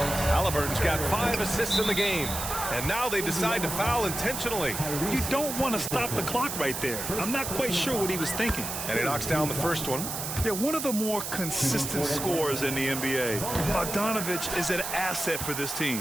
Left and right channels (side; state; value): right; noise; hiss, 5 dB below the sound